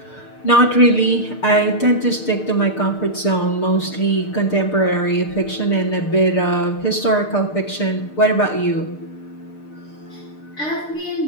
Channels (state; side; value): late; right; 6.6 ms